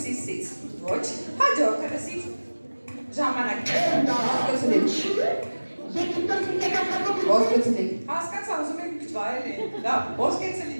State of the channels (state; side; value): inverted; both; correlation -1.00